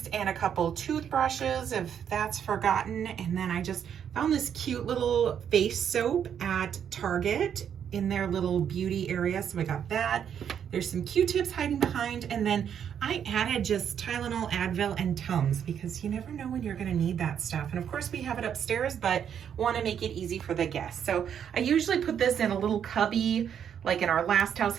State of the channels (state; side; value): quieter; left; 8.5 dB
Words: and a couple toothbrushes if that's forgotten. And then I just found this cute little face soap at Target in their little beauty area. So I got that. There's some Q-tips hiding behind. And then I added just Tylenol, Advil, and Tums because you never know when you're going to need that stuff. And of course we have it upstairs, but want to make it easy for the guests. So I usually put this in a little cubby. Like in our last house,